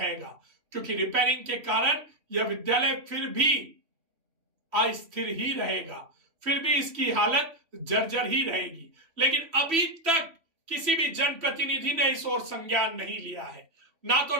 क्योंकि रिपेयरिंग के कारण यह विद्यालय फिर भी अस्थिर ही रहेगा, फिर भी इसकी हालत जर्जर ही रहेगी। लेकिन अभी तक किसी भी जनप्रतिनिधि ने इस ओर संज्ञान नहीं लिया है। ना तो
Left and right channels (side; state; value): left; late; 3.0 ms